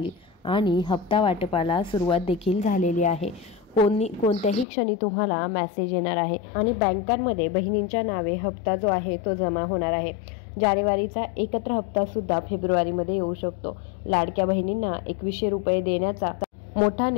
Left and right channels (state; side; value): drops out; right; at 4.7 s